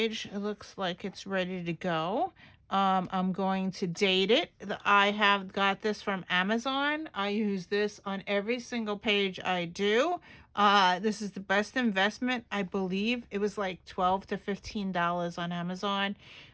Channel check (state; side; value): identical; both; correlation 1.00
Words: it looks like it's ready to go. I'm going to date it. I have got this from Amazon. I use this on every single page I do. This is the best investment, I believe. It was like $12 to $15 on Amazon.